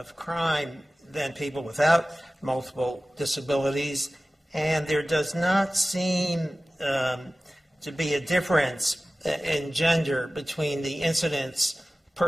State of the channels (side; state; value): both; normal; correlation 0.96